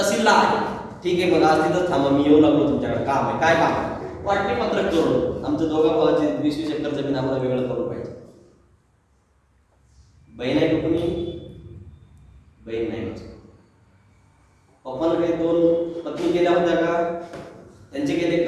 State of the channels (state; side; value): identical; both; correlation 1.00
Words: आहे. ठीक आहे मग आज तिथंच थांबा मी येऊ लागलो तुमच्याकडे. काम आहे. काय काम आहे? वाटणी पत्रक जोडून आमचं 2 भावाची 20-20 एकर जमीन आम्हाला वेगळं करून पाहिजे. बहीण आहे कुठून? बहीण नाही. पप्पानं काही 2 पत्नी केल्या होत्या का? त्यांचे केले